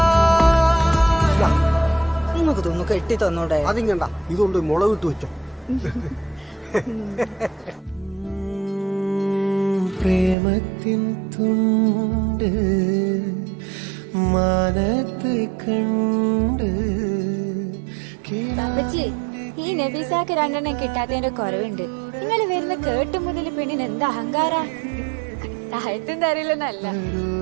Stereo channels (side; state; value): left; drops out; at 10.4 s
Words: നിങ്ങൾക്ക് തോന്നു കെട്ടി തന്നോടെ. അതിങ്ങണ്ട, ഇതുകൊണ്ട് മുളകിട്ട് വെച്ചോ. പ്രേമത്തിൻ തുണ്ട് മാനത്ത് കണ്ട്. ഈ നബീസാക്ക് 2 എണ്ണം കിട്ടാത്തതിന്റെ കുറവുണ്ട്. നിങ്ങൾ വരുന്ന കേട്ടു മുതൽ പെണ്ണിന് എന്താ അഹങ്കാര. താഴത്തും തരില്ലെന്നല്ല.